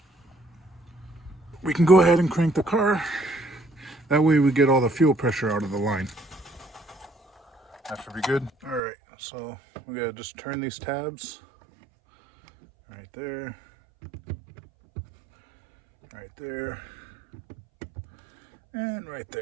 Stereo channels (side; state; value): left; drops out; at 8.8 s